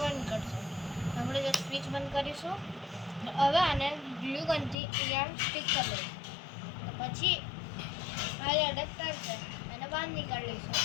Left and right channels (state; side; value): drops out; right; at 4.8 s